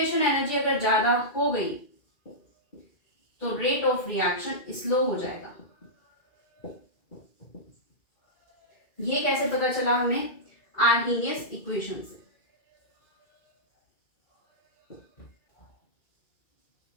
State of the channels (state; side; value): late; right; 2.4 ms